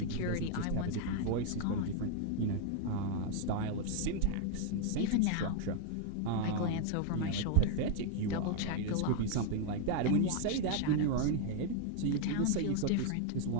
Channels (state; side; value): different; both; correlation 0.00